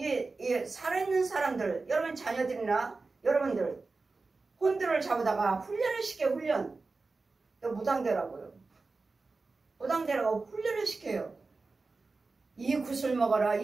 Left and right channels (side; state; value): left; quieter; 3.8 dB